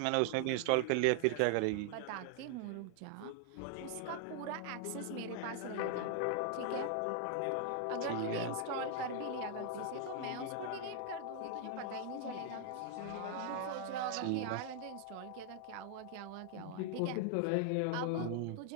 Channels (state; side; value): different; both; correlation 0.00